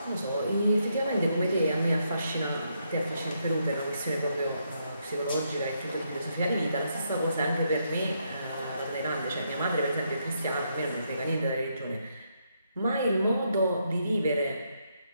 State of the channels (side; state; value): both; inverted; correlation -0.78